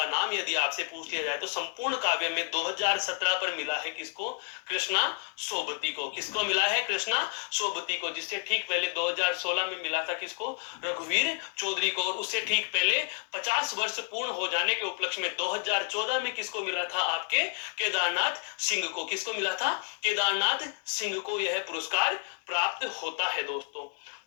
नाम यदि आपसे पूछ लिया जाए तो संपूर्ण काव्य में 2017 पर मिला है किसको? कृष्णा सोबती को। किसको मिला है? कृष्णा सोबती को। जिससे ठीक पहले 2016 में मिला था किसको? रघुवीर चौधरी को। और उससे ठीक पहले 50 वर्ष पूर्ण हो जाने के उपलक्ष्य में 2014 में किसको मिला था? आपके केदारनाथ सिंह को। किसको मिला था? केदारनाथ सिंह को यह पुरस्कार प्राप्त होता है दोस्तों।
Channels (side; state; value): right; quieter; 38.6 dB